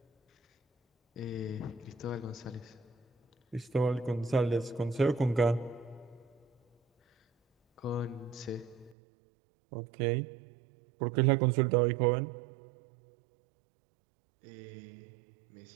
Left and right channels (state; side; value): drops out; left; at 9.0 s